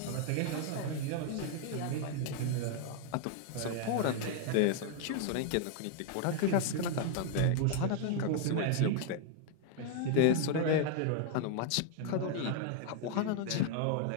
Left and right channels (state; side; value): different; both; correlation 0.00